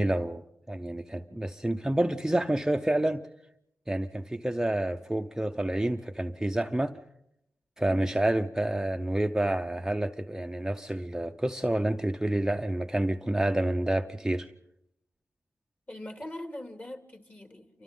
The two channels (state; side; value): normal; both; correlation 0.98